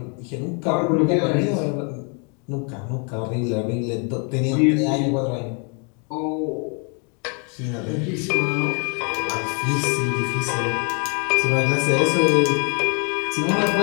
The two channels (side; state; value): right; quieter; 36.9 dB